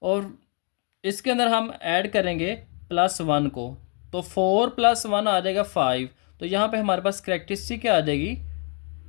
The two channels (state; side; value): quieter; right; 39.1 dB